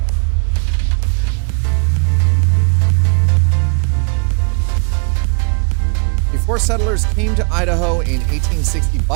Before settlers came to Idaho in 1860,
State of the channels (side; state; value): left; quieter; 39.2 dB